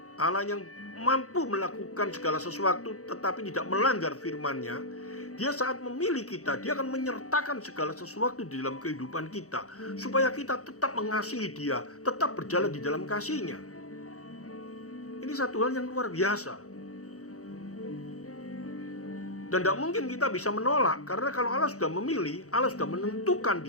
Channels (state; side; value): late; right; 0.65 ms